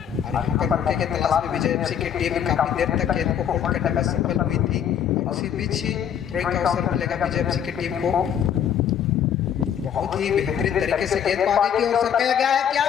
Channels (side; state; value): right; quieter; 9.0 dB